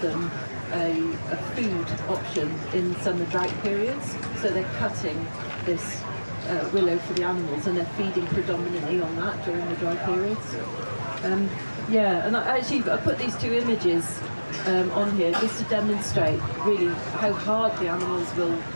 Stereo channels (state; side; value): inverted; both; correlation -1.00